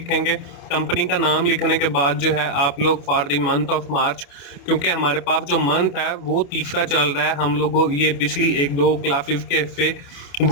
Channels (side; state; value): right; late; 28 ms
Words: कंपनी का नाम लिखने के बाद जो है आप लोग for the month of March, क्योंकि हमारे पास जो मंथ है वो तीसरा चल रहा है, हम लोगों ये पिछली 1-2 क्लासेस के से